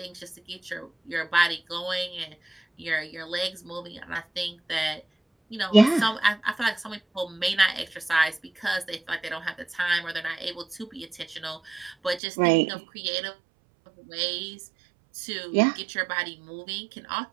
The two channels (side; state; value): left; drops out; at 12.2 s